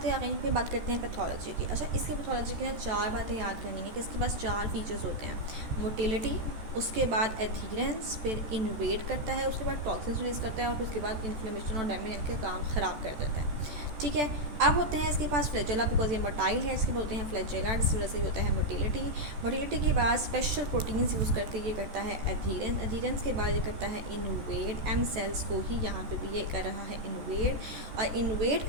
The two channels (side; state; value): left; late; 14 ms